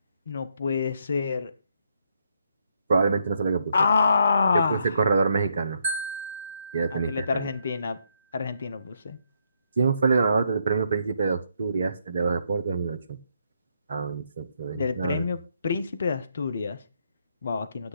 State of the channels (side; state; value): both; inverted; correlation -0.75